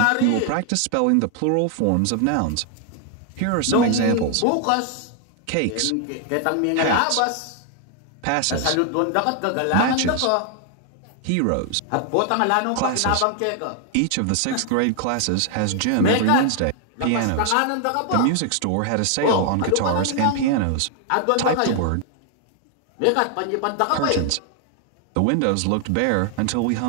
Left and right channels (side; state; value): both; different; correlation 0.00